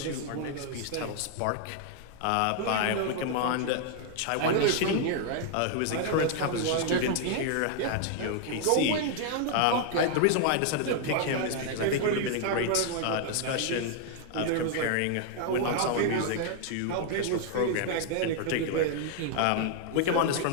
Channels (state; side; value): different; both; correlation 0.00